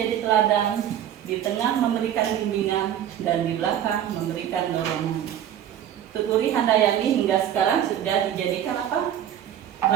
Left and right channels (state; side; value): quieter; left; 10.4 dB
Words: teladan, di tengah memberikan bimbingan, dan di belakang memberikan dorongan. Tutwuri Handayani hingga sekarang sudah dijadikan apa?